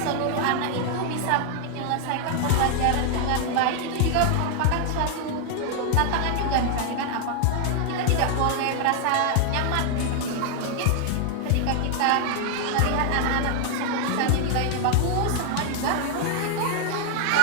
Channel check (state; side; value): different; both; correlation 0.00